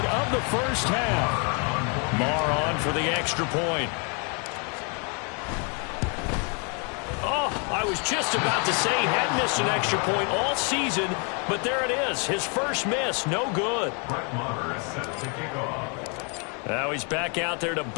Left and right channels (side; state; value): right; quieter; 36.6 dB